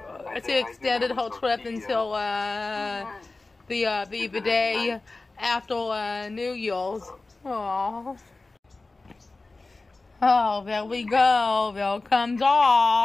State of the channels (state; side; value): quieter; right; 3.4 dB